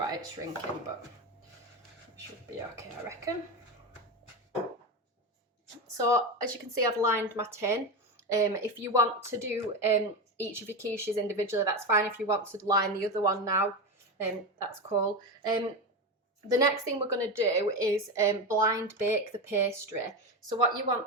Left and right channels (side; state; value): both; normal; correlation 0.17